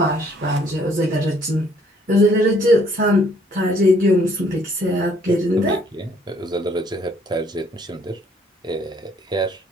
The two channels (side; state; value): both; normal; correlation 0.64